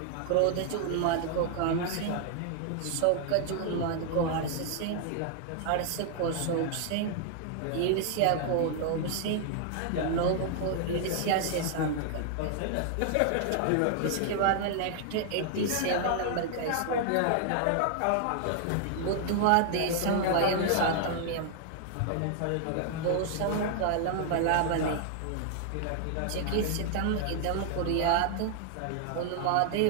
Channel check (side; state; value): both; different; correlation 0.00